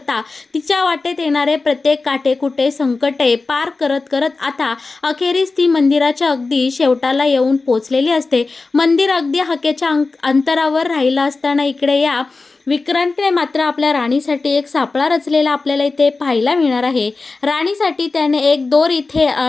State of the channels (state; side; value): quieter; right; 3.8 dB